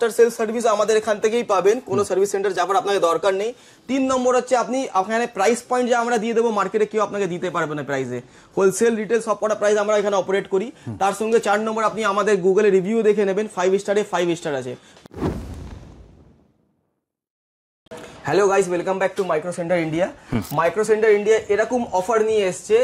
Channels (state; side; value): identical; both; correlation 1.00